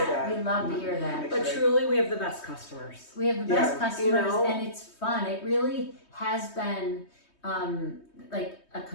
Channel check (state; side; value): late; right; 3.2 ms